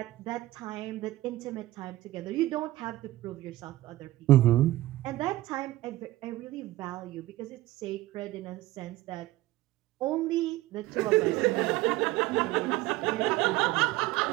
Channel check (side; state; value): left; quieter; 17.0 dB